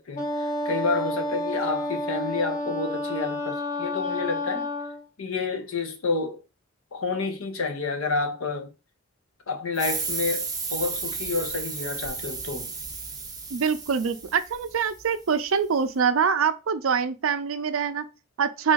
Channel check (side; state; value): both; normal; correlation -0.10